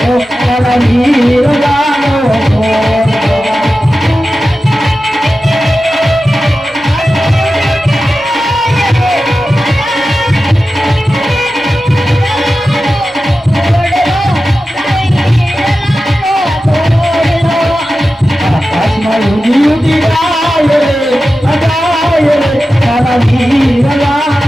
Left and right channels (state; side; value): normal; both; correlation 0.93